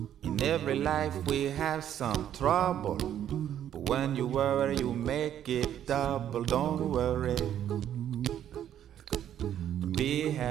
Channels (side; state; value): left; quieter; 10.5 dB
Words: In every life we have some trouble, but when you worry you make it double. Don't worry, be